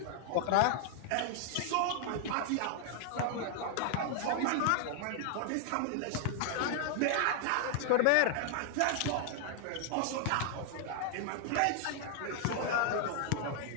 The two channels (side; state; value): both; different; correlation -0.01